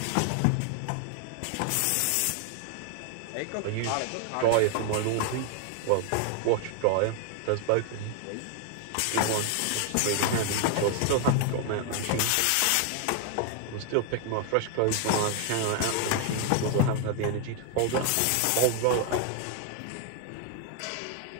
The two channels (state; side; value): different; both; correlation 0.00